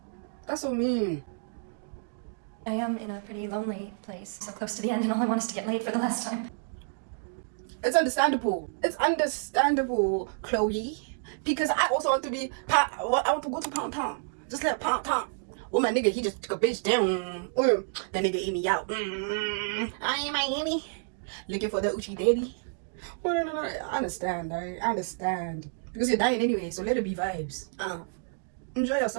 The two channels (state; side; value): silent; left; digital silence